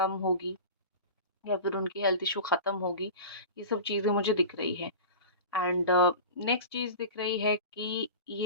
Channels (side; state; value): both; inverted; correlation -0.33